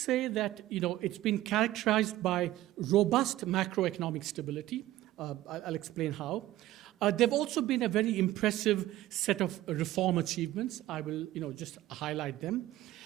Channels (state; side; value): quieter; left; 15.4 dB